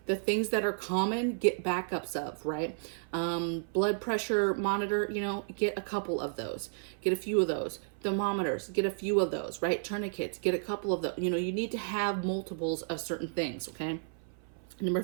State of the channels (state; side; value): silent; left; 56 dB below the other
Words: The things that are common, get backups of, right? Blood pressure monitor, you know, get a couple of those. Get a few of those. Thermometers, get a few of those, right? Tourniquets, get a couple of those. You know, you need to have multiples of certain things, okay? Number